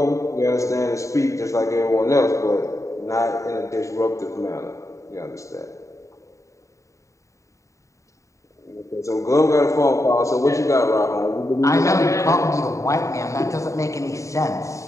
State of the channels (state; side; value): late; right; 0.15 ms